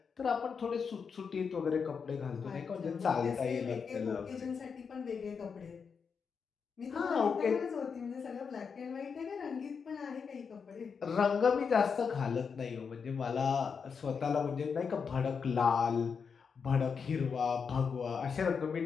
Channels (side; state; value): right; quieter; 6.0 dB